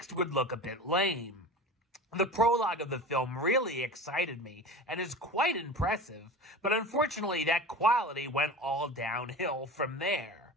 would look a bit lame. The prologue of the film really excited me and is quite impressive, but unfortunately that quality went all downhill from there.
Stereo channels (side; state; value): both; normal; correlation 0.33